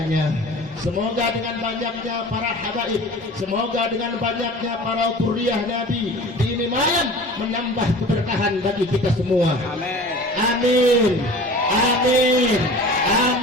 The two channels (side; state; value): both; normal; correlation 0.40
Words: Semoga dengan banyaknya para habaib, semoga dengan banyaknya para dzurriyyah Nabi di ini malam menambah keberkahan bagi kita semua. Amin. Amin.